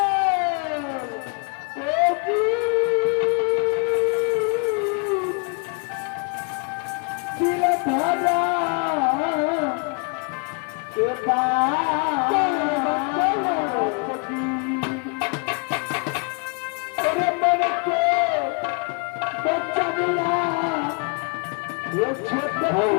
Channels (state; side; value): quieter; right; 36.2 dB